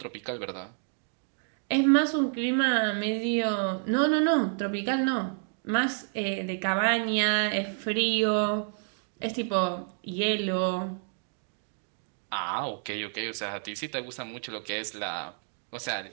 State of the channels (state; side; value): silent; left; 58 dB below the other